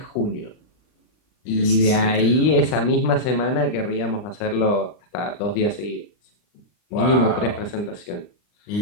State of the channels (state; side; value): late; right; 39 ms